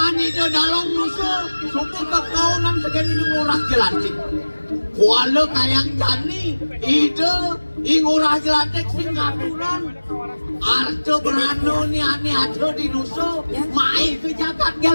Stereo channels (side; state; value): both; inverted; correlation -1.00